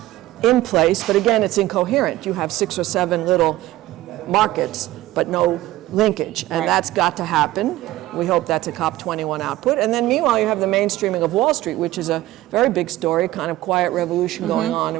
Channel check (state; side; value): quieter; left; 16.5 dB